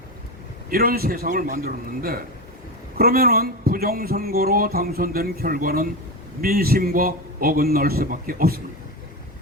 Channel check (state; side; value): normal; both; correlation 0.19